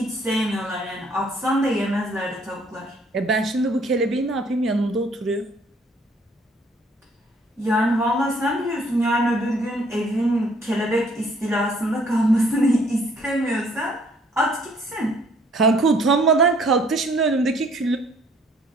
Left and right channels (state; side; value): normal; both; correlation 0.62